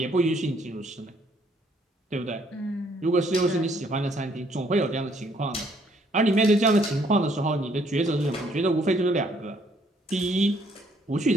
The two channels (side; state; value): both; normal; correlation 0.66